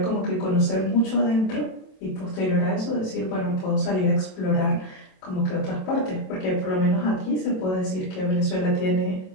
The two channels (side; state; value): right; late; 27 ms